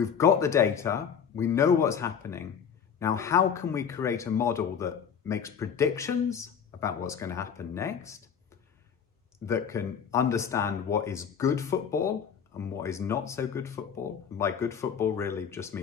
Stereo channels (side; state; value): right; quieter; 7.4 dB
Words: got the data, we know what's happening. Now, how can we create a model that makes predictions about what's going to happen next, that can understand what is good football and what is not so good football? And by good football really just